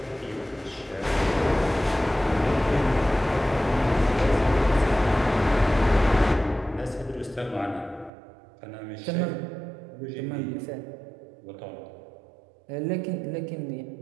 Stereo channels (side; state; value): left; drops out; at 8.1 s